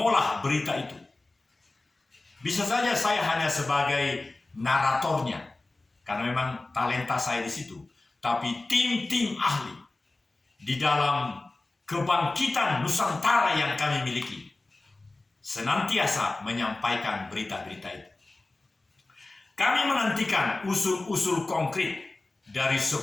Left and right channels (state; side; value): quieter; right; 3.1 dB